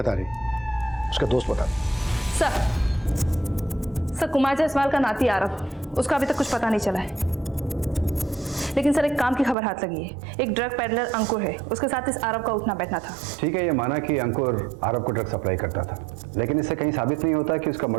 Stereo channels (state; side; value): drops out; left; at 9.6 s